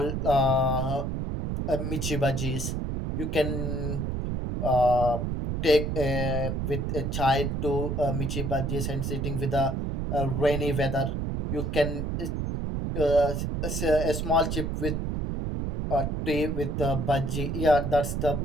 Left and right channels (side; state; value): right; noise; rumble, 1 dB below the sound